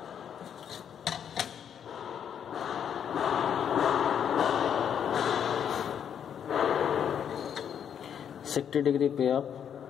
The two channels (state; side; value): quieter; right; 8.5 dB